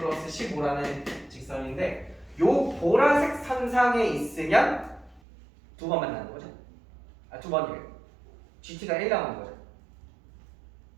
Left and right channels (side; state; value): left; drops out; at 5.2 s